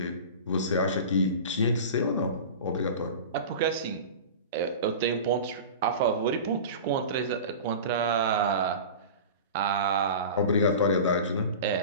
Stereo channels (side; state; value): both; inverted; correlation -0.33